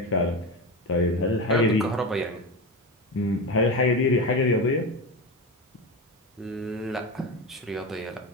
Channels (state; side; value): normal; both; correlation 0.20